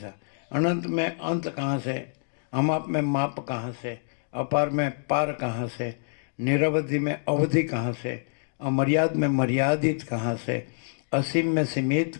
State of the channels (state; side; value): silent; right; digital silence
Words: अनंत में अंत कहाँ से? अमाप में माप कहाँ से? अपार में पार कहाँ से? निरवधि में अवधि कहाँ से? अमर्याद में मर्यादित कहाँ से? असीम में सीमित